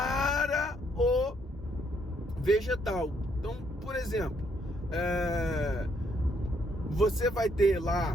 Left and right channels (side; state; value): both; normal; correlation 0.71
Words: o vegetal. Então, por exemplo, você vai ter